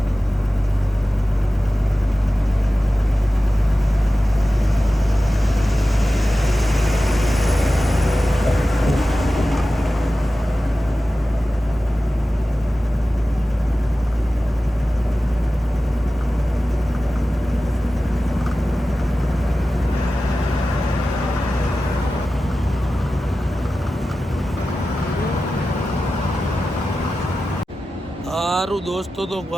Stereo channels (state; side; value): normal; both; correlation 0.95